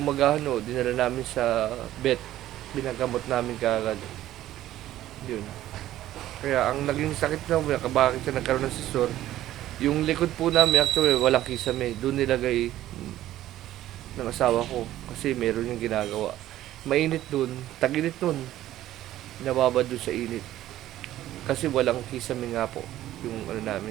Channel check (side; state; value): left; quieter; 13.8 dB